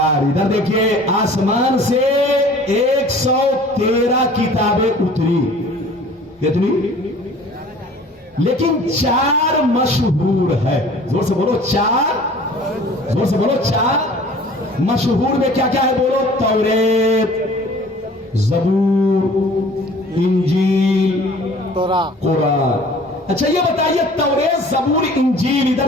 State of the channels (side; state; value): both; normal; correlation 0.48